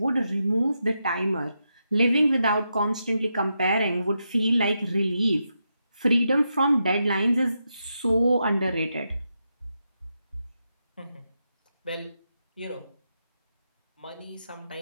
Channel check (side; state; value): both; inverted; correlation -0.85